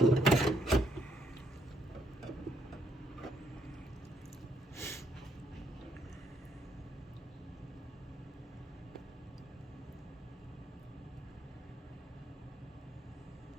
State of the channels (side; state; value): both; normal; correlation 0.72